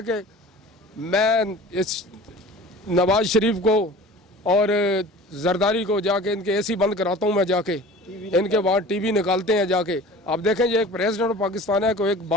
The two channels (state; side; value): normal; both; correlation 0.41